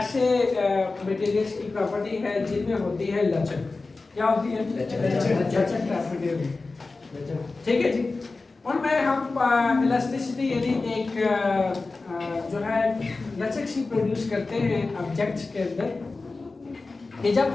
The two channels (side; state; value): right; quieter; 3.6 dB